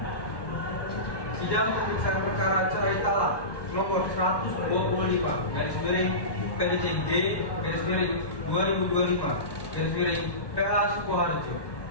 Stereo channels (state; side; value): late; right; 1.1 ms